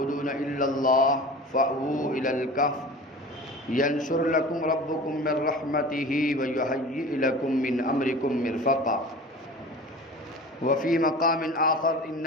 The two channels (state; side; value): normal; both; correlation 0.37